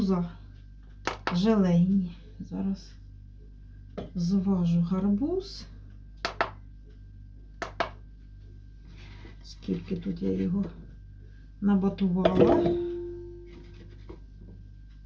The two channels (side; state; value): both; identical; correlation 1.00